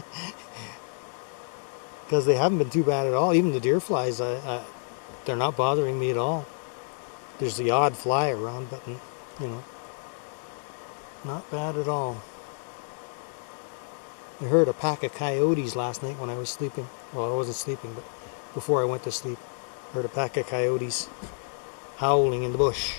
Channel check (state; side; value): silent; right; digital silence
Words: Because they haven't been too bad at all. Even the deer flies, they're not bothering me at all. There's the odd fly around, but not bad at all. I heard a pack of coyotes last night when I was sleeping. Well, I wasn't sleeping, but before I went to sleep, I heard a pack of coyotes howling in the